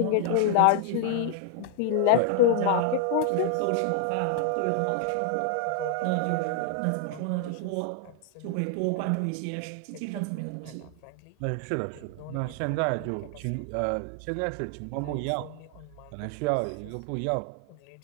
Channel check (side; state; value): both; different; correlation 0.00